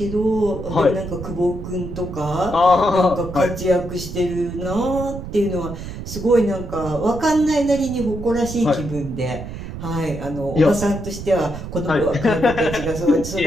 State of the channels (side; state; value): right; noise; rumble, 9 dB below the sound